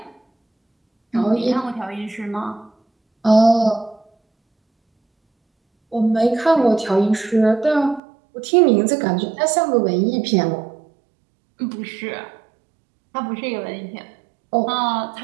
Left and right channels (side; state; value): left; drops out; at 8.0 s